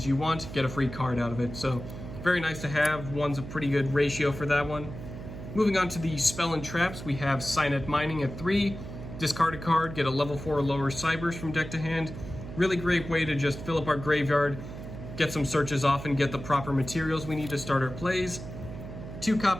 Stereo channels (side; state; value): right; noise; hum, 10 dB below the sound